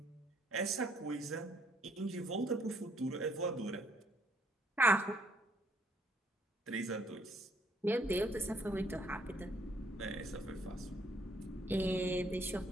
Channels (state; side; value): normal; both; correlation 0.66